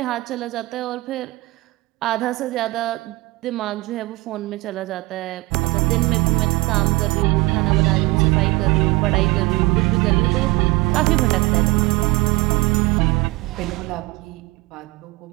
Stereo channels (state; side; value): quieter; left; 22.1 dB